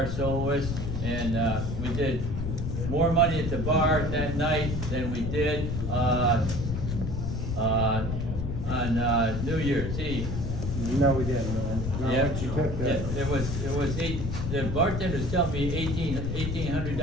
soloist, and we did more money at the bar that night than we did on New Year's Eve. No, we didn't, man. No, Yeah, what you took there. it was the bartenders tell me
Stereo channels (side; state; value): left; noise; rumble, 3 dB below the sound